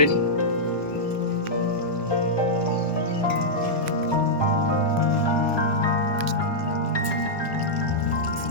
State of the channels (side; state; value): right; late; 1.1 ms